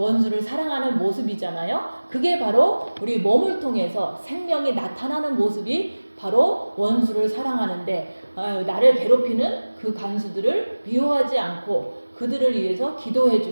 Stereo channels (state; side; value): inverted; both; correlation -1.00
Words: 사랑하는 모습이잖아요. 그게 바로 우리 몸을 통해서 생명이 나타나는 모습이 바로 원수를 사랑하는데, 나를 괴롭히는 그 간수들을 미워하지 않고 그들을 위해서